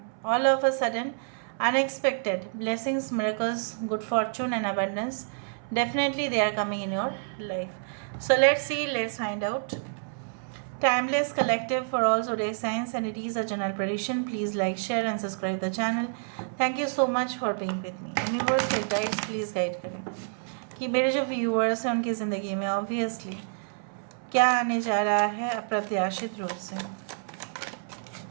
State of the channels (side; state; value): left; silent; 59 dB below the other